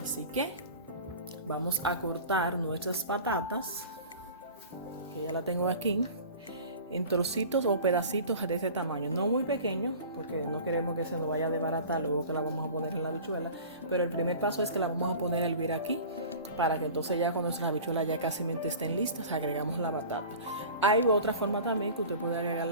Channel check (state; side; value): inverted; both; correlation -0.39